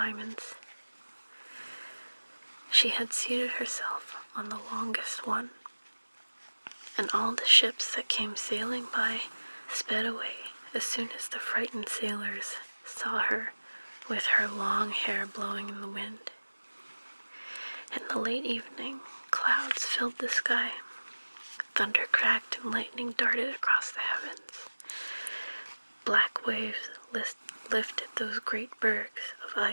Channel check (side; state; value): both; inverted; correlation -1.00